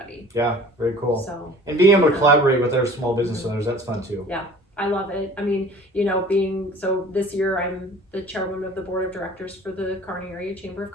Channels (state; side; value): normal; both; correlation 0.46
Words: Yeah, very cool. So, and being able to collaborate with other small business owners, that's fun too. Yeah, I love it. I mean, this year I'm the chairwoman of the board of directors for the Kearney Area Chamber of